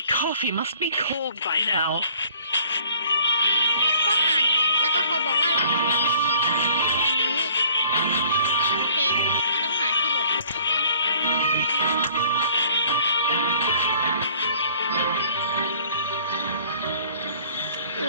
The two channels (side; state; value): both; inverted; correlation -0.56